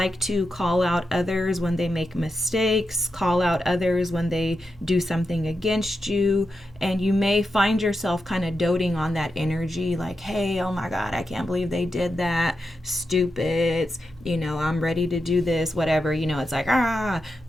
to call out others when they make mistakes, call out others when they do something against you, and you may find yourself kind of doting on that energy, like, hey, oh my God, I can't believe they did that, stupids, I'm ready to do this, whatever, it's like,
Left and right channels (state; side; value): normal; both; correlation 0.87